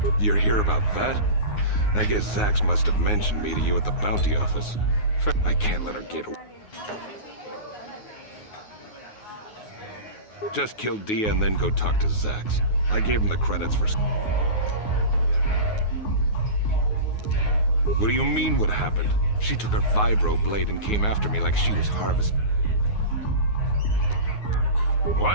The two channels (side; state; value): right; late; 9.5 ms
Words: You're here about that? I guess Zax must have mentioned me to you at the bounty office. I can't let her get away. Just kill Dia and then go talk to Zax. I gave him the credits for... What do you mean what happened? She took her vibro blade and came after me like she was Harvest.